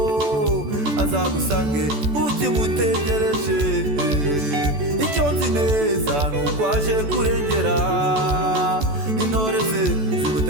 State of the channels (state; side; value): late; left; 14 ms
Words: azagusange ukimutegereje. Icyo nzi neza nuko aje kurengera intore ze